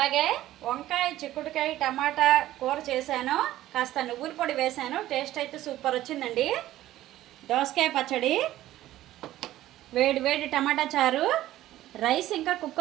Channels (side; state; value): left; quieter; 14.5 dB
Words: వంకాయ చిక్కుడుకాయ టమాటా కూర చేశాను. కాస్త నువ్వుల పొడి వేశాను. టేస్ట్ అయితే సూపర్ వచ్చిందండి. దోసకాయ పచ్చడి, వేడి వేడి టమాటా చారు, రైస్ ఇంకా